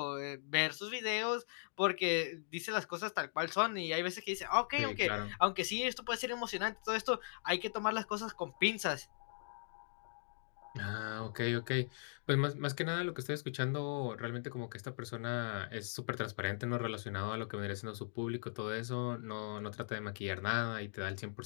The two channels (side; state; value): right; silent; digital silence